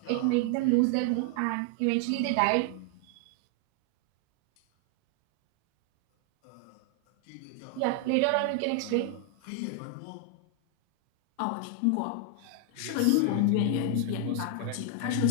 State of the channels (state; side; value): different; both; correlation 0.00